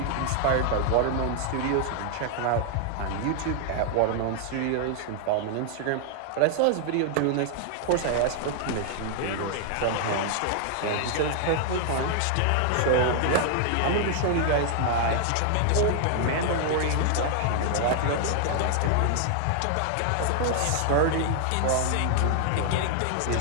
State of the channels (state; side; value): different; both; correlation 0.00